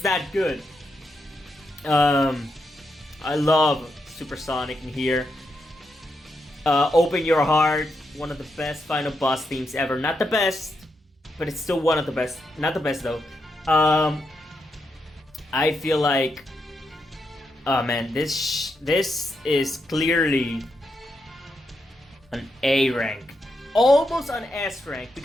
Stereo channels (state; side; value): normal; both; correlation 0.83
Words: that good. I love Supersonic in here. Open Your Heart, one of the best final boss themes ever. Not the best, but it's still one of the best. Not the best though. I feel like, oh man, this is clearly an A rank, almost an S rank,